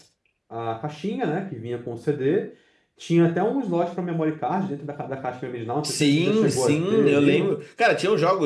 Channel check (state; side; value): identical; both; correlation 1.00